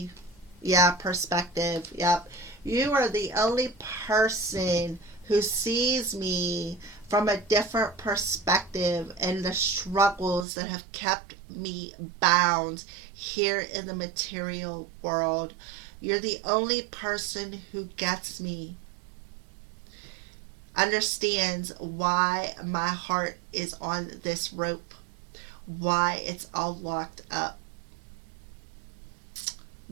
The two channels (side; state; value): left; drops out; at 10.5 s